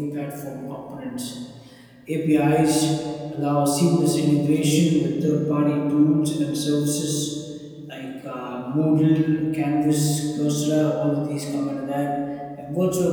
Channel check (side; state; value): both; identical; correlation 1.00